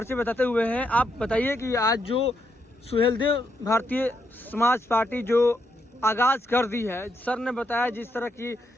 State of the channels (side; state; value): both; normal; correlation 0.79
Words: बताते हुए हैं। आप बताइए कि आज जो सुहेलदेव भारतीय समाज पार्टी जो आगाज कर दी है, सर ने बताया जिस तरह की